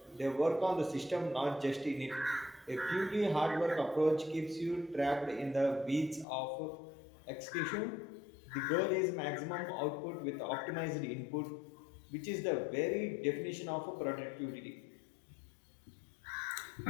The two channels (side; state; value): right; drops out; at 6.2 s